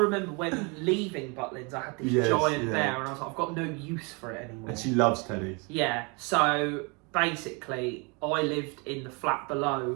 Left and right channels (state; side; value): quieter; left; 30.9 dB